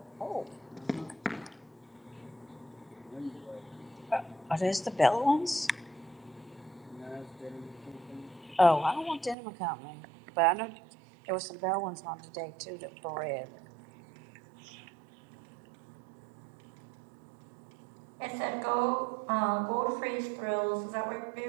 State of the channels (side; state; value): left; drops out; at 9.3 s